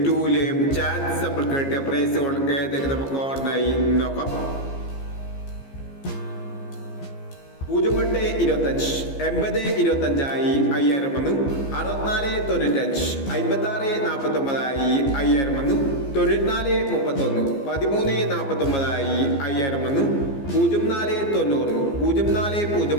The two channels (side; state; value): right; late; 15 ms